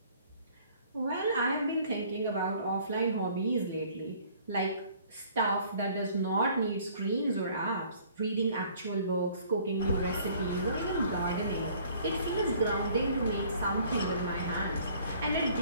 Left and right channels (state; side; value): inverted; both; correlation -0.56